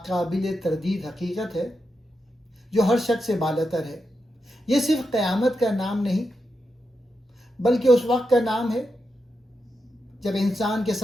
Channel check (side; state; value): both; normal; correlation 0.87